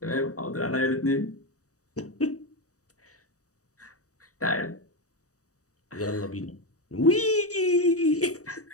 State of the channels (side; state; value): right; late; 0.66 ms